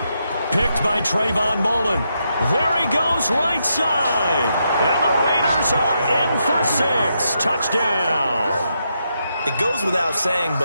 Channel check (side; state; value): both; inverted; correlation -0.81